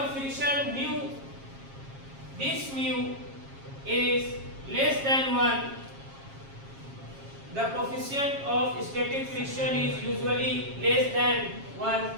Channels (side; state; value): left; late; 7.4 ms